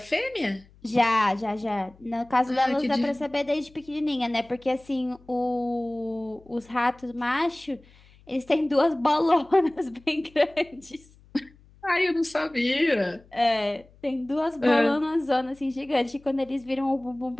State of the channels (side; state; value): left; noise; hum, 27 dB below the sound